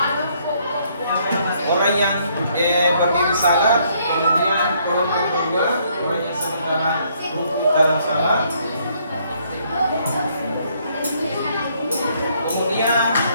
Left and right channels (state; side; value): inverted; both; correlation -0.68